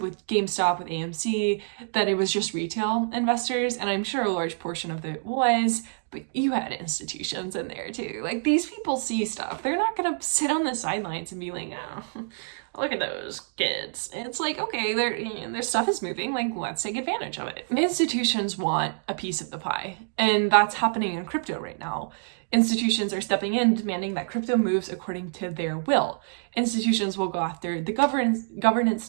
with GameStop, with AMC, that it was just retail investors, and I'm sure a large portion of it was, But you had institutions in there too. Like, these people see stuff. They're not gonna sit on the sidelines and be like, oh, look at those kids. It's like, okay, their stuff is moving, like, let's take advantage of it. Institutions want a piece of the pie, and that's happening in crypto right now. Institutions are stepping in, demanding that crypto moves according to their will. Institutions will go after the governance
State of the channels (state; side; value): silent; left; digital silence